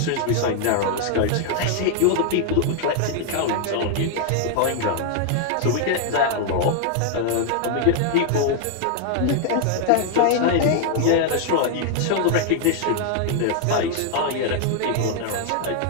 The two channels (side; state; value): both; different; correlation 0.00